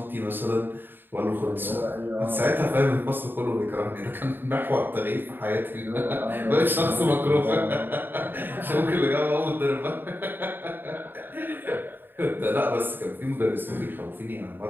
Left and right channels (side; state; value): left; late; 0.095 ms